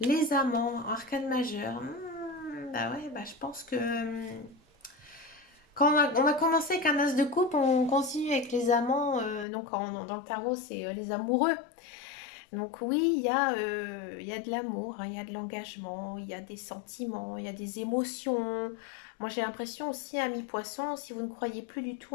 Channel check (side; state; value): right; drops out; at 9.5 s